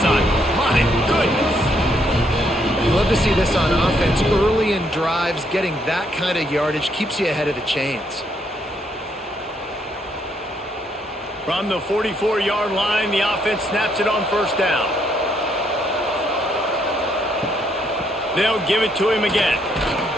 cycle. My goodness. You love to see this on offense. Early in drives, getting that kind of yardage keeps you ahead of the chains. From the 44-yard line, the offense snaps it on 1st down. They'll give it to him again.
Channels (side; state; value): both; normal; correlation 0.73